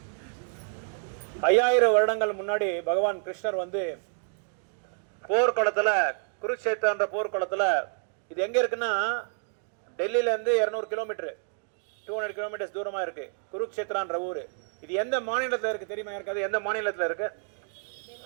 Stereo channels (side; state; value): left; silent; 56 dB below the other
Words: ஐயாயிரம் வருடங்கள் முன்னாடி பகவான் கிருஷ்ணர் வந்து போர்க்குளத்தில் குருக்ஷேத்திரன்ற போர்க்குளத்தில், இது எங்கே இருக்குன்னா டெல்லியிலேருந்து 200 கிலோமீட்டர் 200 கிலோமீட்டர்ஸ் தூரமாக இருக்குது குருக்ஷேத்திரான்ற ஊர். இது எந்த மாநிலத்தில் இருக்குது தெரியுமா? இருக்காது. எந்த மாநிலத்தில் இருக்குது?